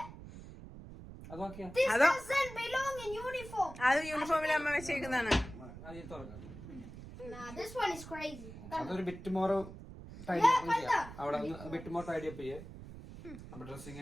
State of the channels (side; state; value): right; noise; rumble, 13 dB below the sound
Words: അതൊക്കെ This Ado. doesn't belong in uniform. അത് യൂണിഫോമിൽ അമ്മ വെച്ചേക്കുന്നതാണ്. Nah, this one is crazy. അതൊരു ബിറ്റ് മോർ ടൈഡി അപ്പ് ചെയ്യാം. അവിടെ ബിറ്റ് മോർ ടൈഡി അപ്പ് ചെയ്യേ. അപ്പൊ